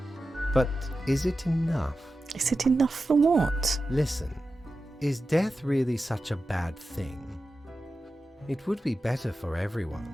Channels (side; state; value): both; normal; correlation 0.92